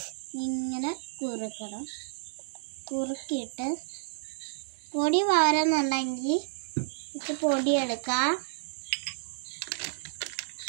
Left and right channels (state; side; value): silent; left; digital silence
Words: ഇങ്ങനെ കുറുക്കണം. കുറുക്കിയിട്ട് പൊടി വാരുന്നുണ്ടെങ്കിൽ ഇത് പൊടി എടുക്കാം.